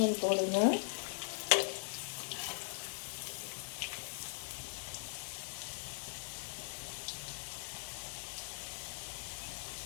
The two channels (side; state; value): right; silent; digital silence